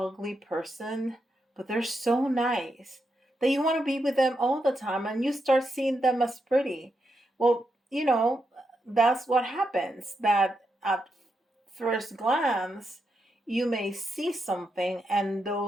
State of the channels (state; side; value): normal; both; correlation 0.84